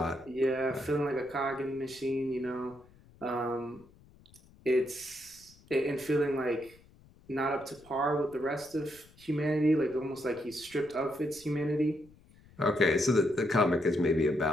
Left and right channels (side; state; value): left; noise; rumble, 26 dB below the sound